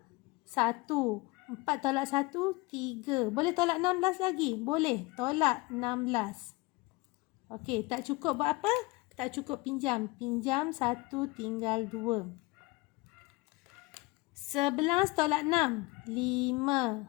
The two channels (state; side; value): quieter; right; 24.1 dB